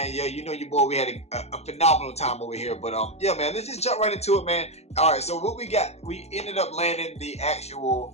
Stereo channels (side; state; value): right; late; 0.31 ms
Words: yeah, you know your boy, we had a phenomenal time over here, but yeah, man, let's just jump right into it, man. All right, so what we got, we ended up landing the